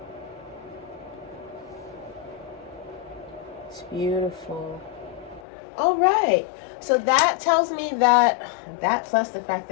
It's beautiful. All right. So that tells me that plus the fact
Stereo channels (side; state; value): right; drops out; at 5.4 s